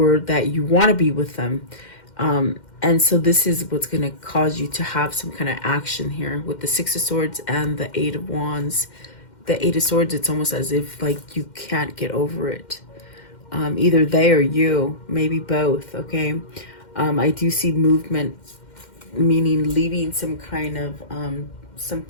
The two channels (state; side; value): late; right; 2.1 ms